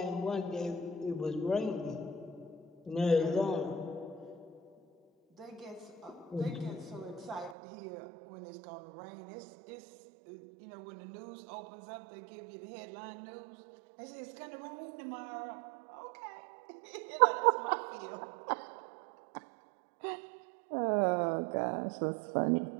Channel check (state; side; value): drops out; left; at 7.6 s